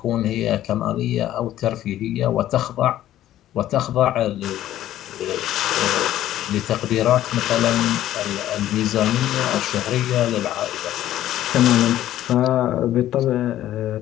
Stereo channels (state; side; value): quieter; right; 13.0 dB